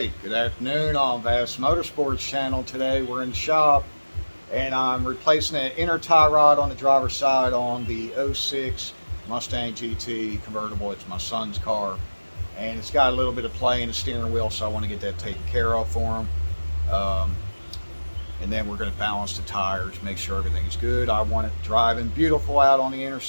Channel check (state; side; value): inverted; both; correlation -1.00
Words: good afternoon on Vassmotorsports channel. Today we're in the shop and I'm replacing an inner tie rod on the driver's side on the '06 Mustang GT convertible. It's my son's car and it's got a little bit of play in the steering wheel, so I want to get that taken care of for him. And then we're going to balance the tires, make sure everything's good. I want it driving beautiful out on the